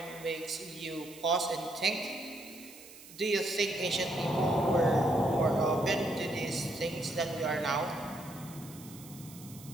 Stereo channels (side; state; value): right; noise; hiss, 18 dB below the sound